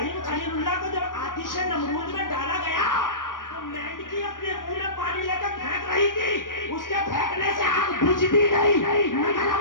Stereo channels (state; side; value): late; right; 0.89 ms